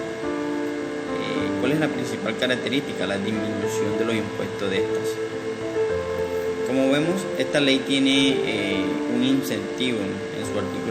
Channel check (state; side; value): identical; both; correlation 1.00